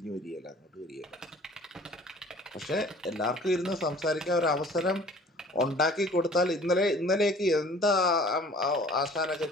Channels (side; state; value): both; normal; correlation 0.50